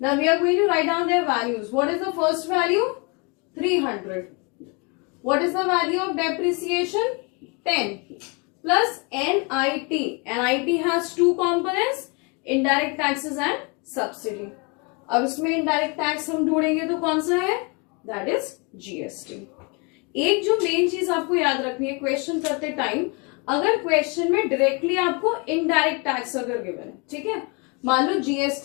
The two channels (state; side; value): quieter; right; 31.2 dB